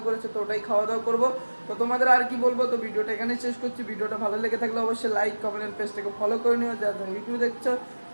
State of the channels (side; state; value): both; inverted; correlation -1.00